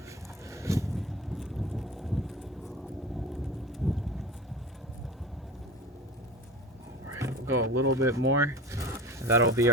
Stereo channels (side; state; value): both; normal; correlation 0.34